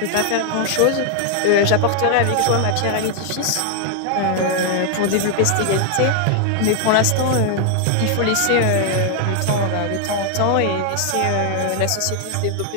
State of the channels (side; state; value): both; different; correlation 0.00